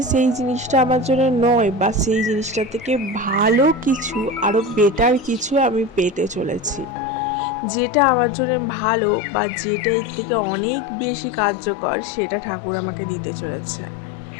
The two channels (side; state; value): right; drops out; at 7.0 s